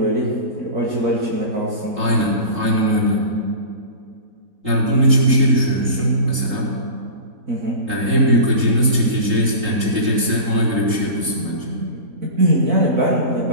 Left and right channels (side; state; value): left; late; 3.8 ms